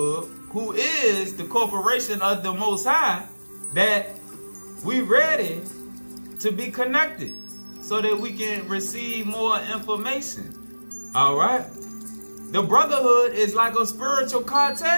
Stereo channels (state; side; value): inverted; both; correlation -1.00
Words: who is the corporation of the Most High, that we ready to be connected so that we can receive more information. Alright? The brotherhood is like a spiritual